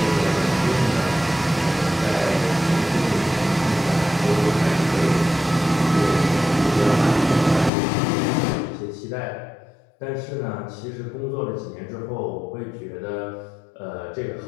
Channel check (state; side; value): drops out; right; at 7.7 s